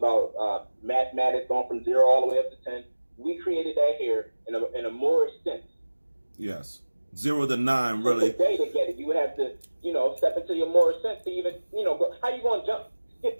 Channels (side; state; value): both; inverted; correlation -1.00